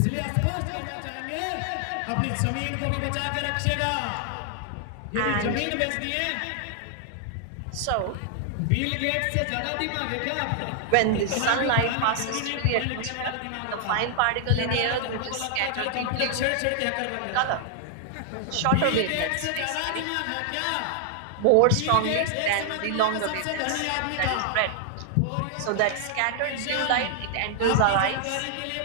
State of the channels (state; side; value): different; both; correlation 0.00